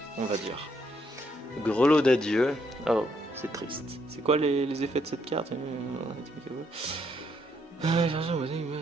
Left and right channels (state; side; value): normal; both; correlation 0.73